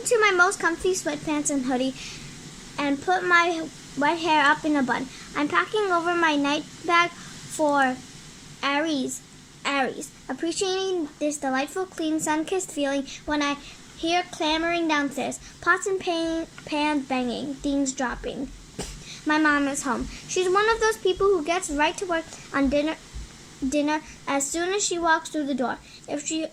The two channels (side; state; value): both; identical; correlation 1.00